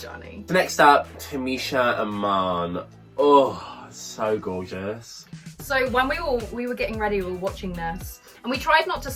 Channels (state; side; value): identical; both; correlation 1.00